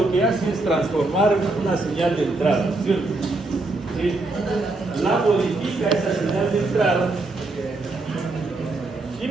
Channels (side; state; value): left; quieter; 3.1 dB